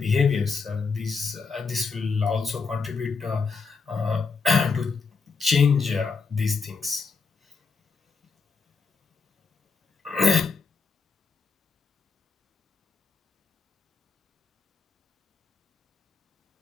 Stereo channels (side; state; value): right; quieter; 4.7 dB